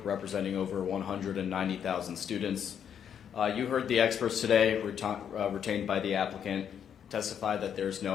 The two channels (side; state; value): right; quieter; 8.5 dB